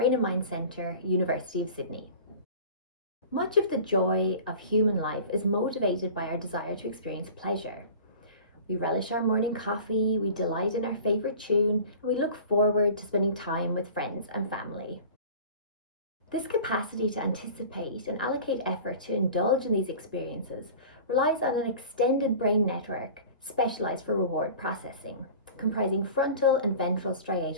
and Mind Centre, University of Sydney. Much of the joy of human life is motivated by our desire to experience pleasure. We relish our morning coffee, we delight in our favourite tune, and we look forward to spending time with friends and family. This capacity to anticipate and allocate effort to indulge in these experiences relies on an extended brain network specialised for reward processing, comprising frontal and ventral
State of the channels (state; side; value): inverted; both; correlation -0.40